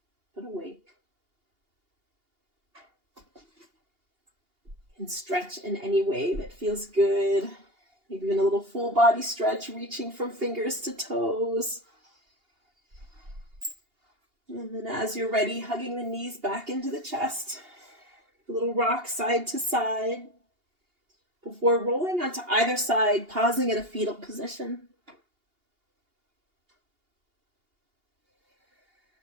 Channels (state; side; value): late; left; 2.8 ms